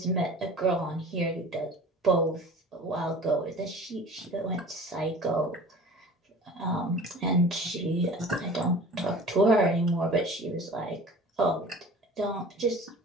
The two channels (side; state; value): both; normal; correlation 0.41